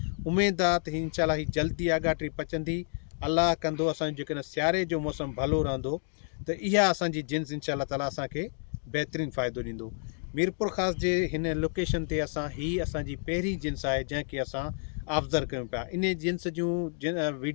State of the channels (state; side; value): silent; right; 58 dB below the other